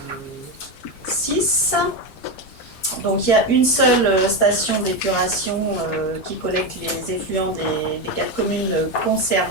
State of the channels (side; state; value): right; late; 9.3 ms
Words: 6, donc il y a une seule station d'épuration qui collecte les effluents des 4 communes